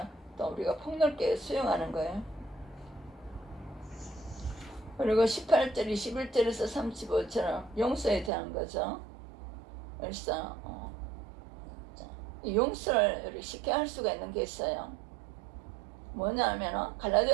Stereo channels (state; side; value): drops out; left; at 8.3 s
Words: 또 우리가 폭넓게 수용하는 거예요. 그리고 18절, 21절에서 35절은 용서에 대한 거죠. 그래서 용서를 쉽게 할 수가 있는 게 있어요. 뭐냐면